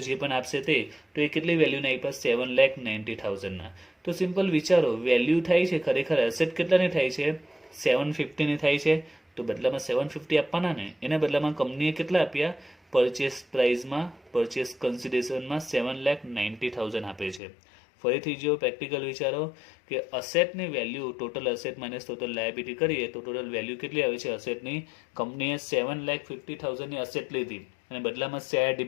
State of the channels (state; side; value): drops out; right; at 17.4 s